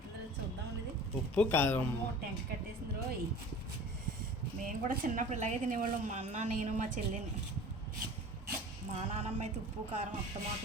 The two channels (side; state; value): both; normal; correlation 0.41